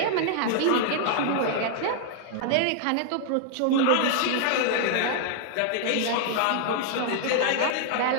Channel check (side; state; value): both; different; correlation -0.01